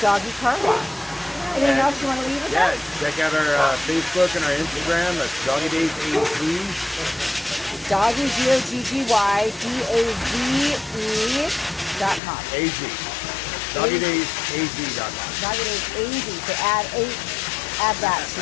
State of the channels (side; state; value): right; drops out; at 12.2 s